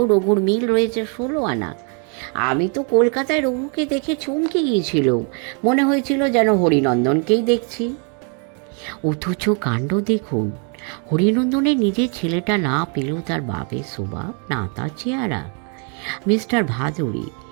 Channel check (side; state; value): left; quieter; 38.9 dB